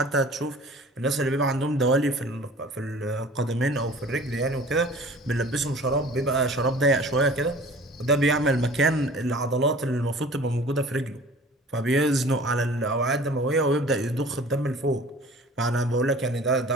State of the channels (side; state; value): both; normal; correlation 0.45